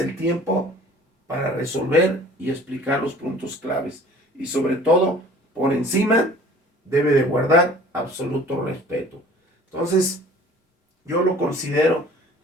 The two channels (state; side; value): normal; both; correlation 0.48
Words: el tiempo para resolver y explicar los puntos claves. Y sobre todo, por encima, debe de guardar absoluto respeto. Entonces, yo lo considero